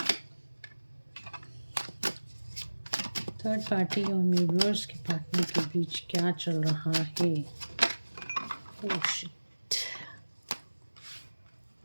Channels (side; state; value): both; inverted; correlation -1.00